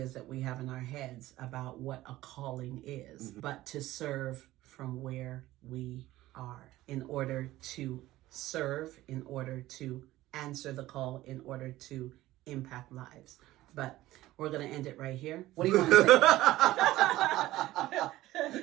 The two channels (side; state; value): left; quieter; 16.3 dB